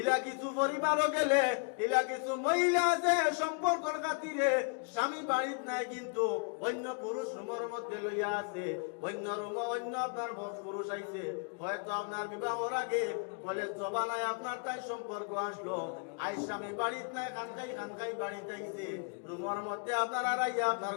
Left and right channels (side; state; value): right; quieter; 37.3 dB